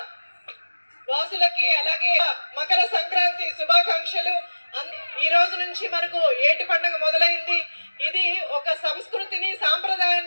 వాసులకి అలాగే మకర సంక్రాంతి శుభాకాంక్షలు. ఈ రోజు నుంచి మనకు ఏటి పండుగ మొదలైంది. ఇది ఒక సంస్కృతిని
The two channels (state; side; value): inverted; both; correlation -1.00